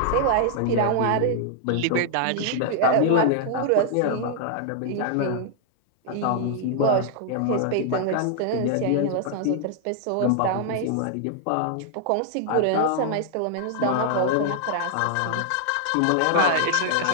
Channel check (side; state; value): both; different; correlation -0.01